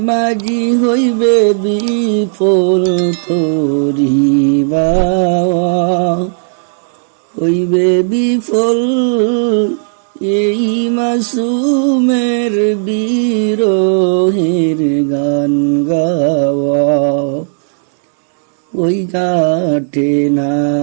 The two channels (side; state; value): left; silent; digital silence